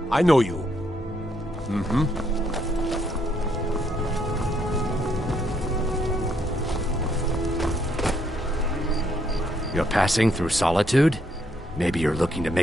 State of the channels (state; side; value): normal; both; correlation 0.73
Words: I know you. Mm-hmm. You're passing through Solitude? Maybe you're looking to